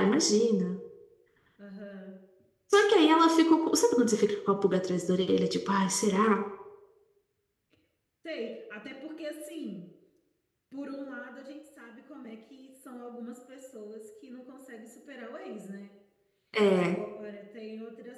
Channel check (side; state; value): both; identical; correlation 1.00